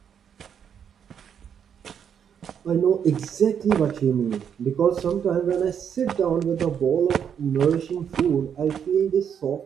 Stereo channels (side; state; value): left; quieter; 8.1 dB